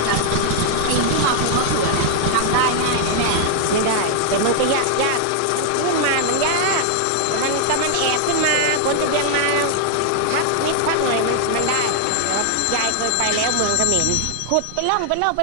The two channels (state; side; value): different; both; correlation 0.00